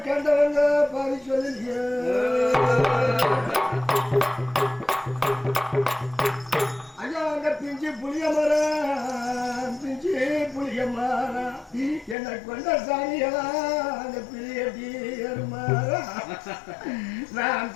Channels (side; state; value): right; drops out; at 12.2 s